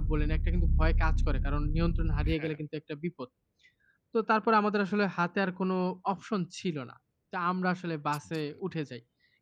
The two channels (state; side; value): identical; both; correlation 1.00